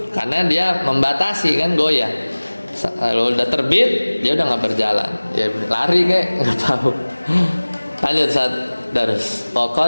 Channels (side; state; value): both; inverted; correlation -1.00